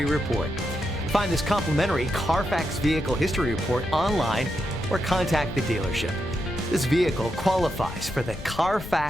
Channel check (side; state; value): left; noise; rumble, 12 dB below the sound